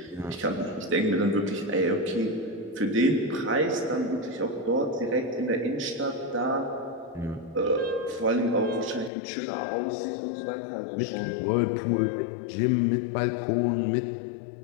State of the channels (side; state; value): right; drops out; at 9.1 s